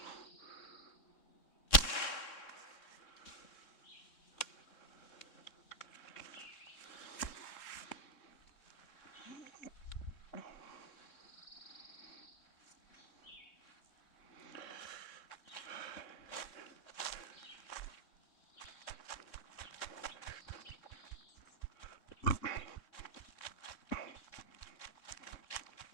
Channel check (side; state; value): right; late; 3.6 ms